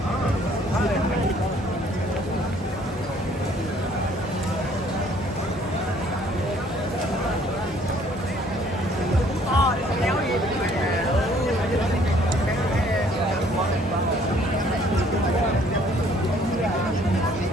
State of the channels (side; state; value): both; normal; correlation 0.60